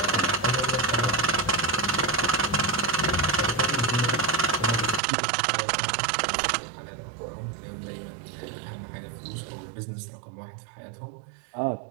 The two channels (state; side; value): drops out; left; at 5.0 s